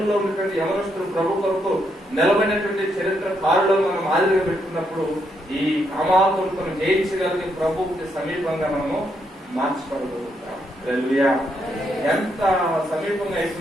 ఉన్నటువంటి యవనస్తులు ప్రభు కొరకు నిలబడినటువంటి చరిత్ర కారులో మనం ఆదిగా పెట్టుకున్నప్పుడు ఈ కామాతులను జయించగలిగే ప్రభువుకి సమీపంగా మనము మార్చగలుగుతాం. హల్లెలూయా. ఎంత సమీపంగా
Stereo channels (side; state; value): both; normal; correlation 0.77